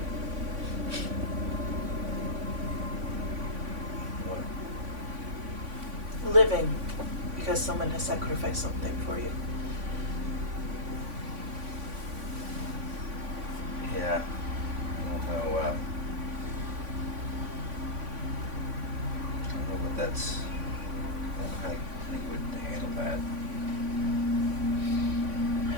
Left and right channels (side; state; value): left; late; 3.5 ms